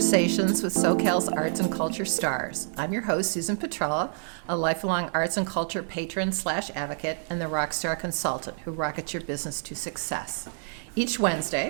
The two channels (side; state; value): left; silent; 60 dB below the other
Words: with SoCal's arts and culture stars. I'm your host, Susan Petrella, a lifelong arts and culture patron / advocate and the rockstar consultant who rockets your business to success. Each